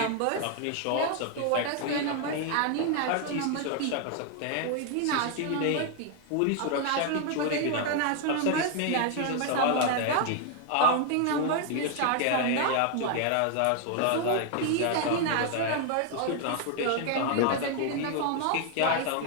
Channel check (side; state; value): both; different; correlation 0.00